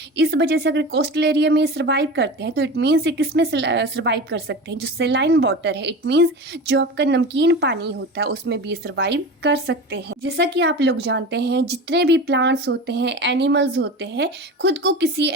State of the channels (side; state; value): both; normal; correlation 0.30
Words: इस वजह से अगर कोस्टल एरिया में सर्वाइव करते हैं तो इट मीन्स ये किस में सर्वाइव कर सकते हैं, जो सेलाइन वाटर है, इट मीन्स जो आपका नमकीन पानी होता है उसमें भी सर्वाइव कर सकते हैं। जैसा कि आप लोग जानते हैं, जितने भी प्लांट्स होते हैं, एनिमल्स होते हैं, खुद को किसी